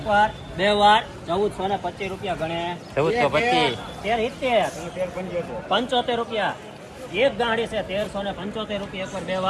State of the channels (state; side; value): identical; both; correlation 1.00